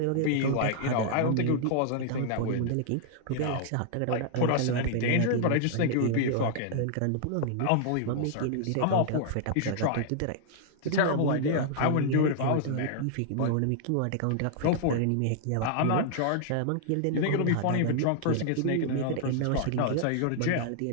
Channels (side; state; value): both; different; correlation -0.01